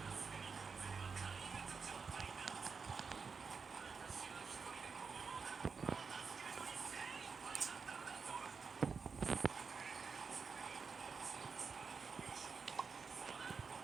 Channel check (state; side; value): quieter; left; 5.3 dB